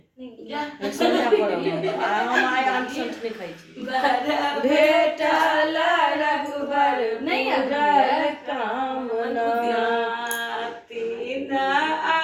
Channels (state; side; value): identical; both; correlation 1.00